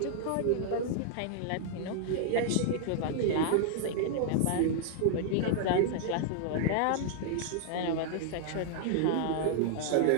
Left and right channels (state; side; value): different; both; correlation -0.01